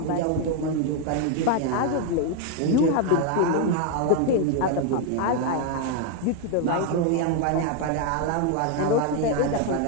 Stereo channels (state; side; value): different; both; correlation 0.01